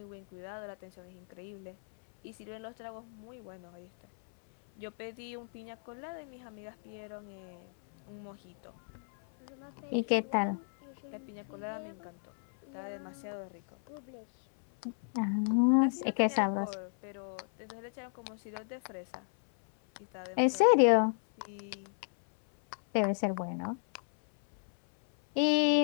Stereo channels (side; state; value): right; silent; 55 dB below the other